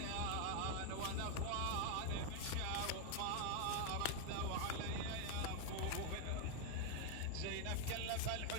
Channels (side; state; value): both; different; correlation 0.01